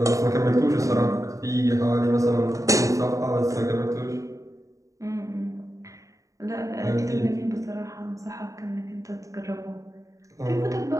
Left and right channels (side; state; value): left; late; 0.16 ms